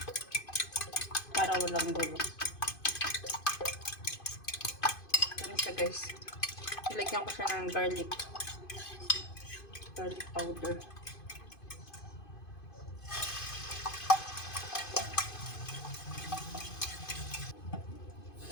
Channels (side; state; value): right; late; 2.5 ms